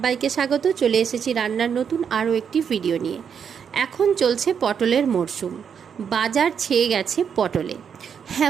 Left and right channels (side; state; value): left; quieter; 7.3 dB